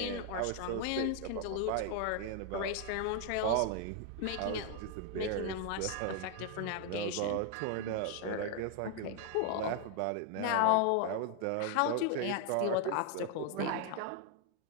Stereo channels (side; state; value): both; different; correlation 0.00